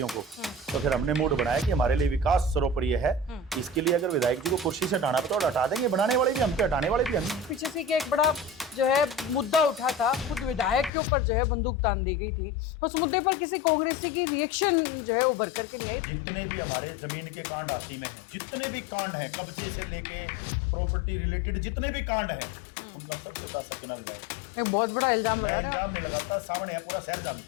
को, तो फिर हमने मूड बनाया कि हमारे लिए विकास सर्वोपरि है। इसके लिए अगर विधायक जी को कुर्सी से हटाना पड़ा तो हटा देंगे, बनाने वाले भी हम पे, हटाने वाले भी हम। पीछे से कि एक बड़ा जो है मुद्दा उठा था, खुद विधायक के ऊपर जो है बंदूक तान दी गई थी, उस मुद्दे पर किसी कांग्रेसी की रिएक्शन जो है उभर करके नहीं आई। जितने भी हमारे जमीन के कांड हाथी में हैं, जितने भी कांड हैं, कब्जे से लेके प्रॉपर्टी रिलेटेड जितने भी कांड हैं, उनका सबसे बड़ा सरगना विधायक। एक बहुत बड़ा इल्जाम मैं इल्जाम नहीं लगाता, सामने है, पूरा शहर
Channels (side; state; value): right; drops out; at 10.9 s